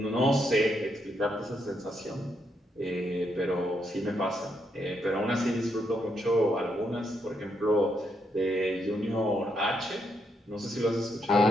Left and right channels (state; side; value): normal; both; correlation 0.78